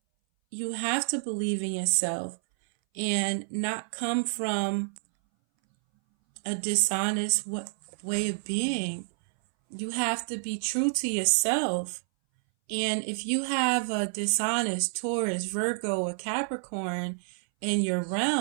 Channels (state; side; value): silent; left; 59 dB below the other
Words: you have to believe in yourself and not come from a dishonest way of being. You have to be true to yourself. And if you have a dishonest Taurus, Virgo, or Capricorn, in your